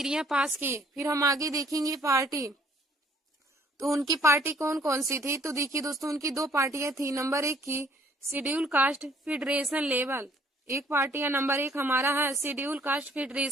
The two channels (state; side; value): normal; both; correlation 0.61